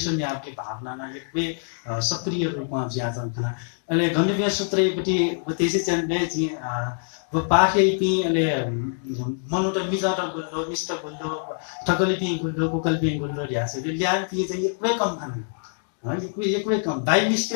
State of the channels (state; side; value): silent; right; digital silence